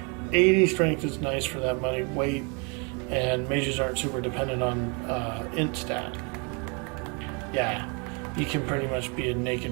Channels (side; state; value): left; quieter; 33.8 dB